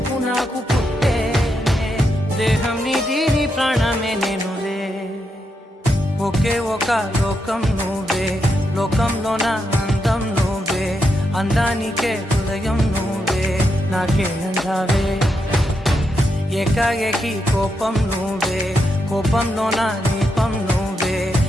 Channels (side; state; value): both; normal; correlation 0.83